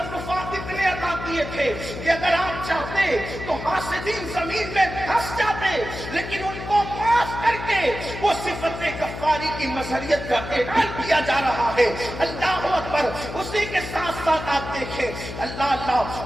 اتنے عطا کیے تھے کہ اگر آپ چاہتے تو حاسدین زمین میں دھس جاتے، لیکن ان کو معاف کر کے وہ صفت غفاری کی مظہریت کا اعلان کیا جا رہا ہے۔ اللہ اکبر، اسی کے ساتھ ساتھ آپ دیکھیں اللہ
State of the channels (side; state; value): left; noise; hum, 9 dB below the sound